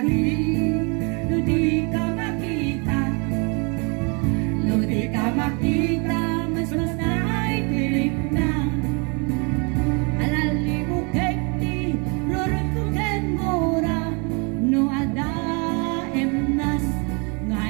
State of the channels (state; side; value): quieter; left; 32.7 dB